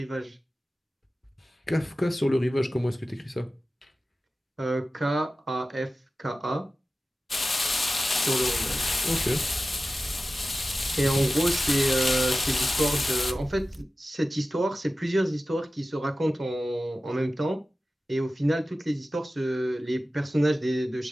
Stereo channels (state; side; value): normal; both; correlation 0.95